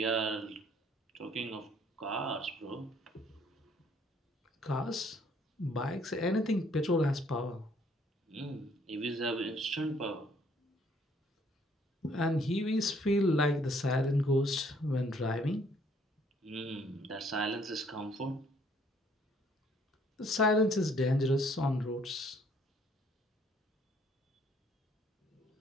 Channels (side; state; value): both; normal; correlation 0.63